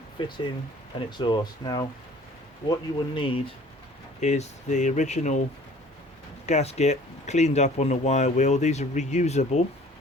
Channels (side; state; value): both; normal; correlation 0.51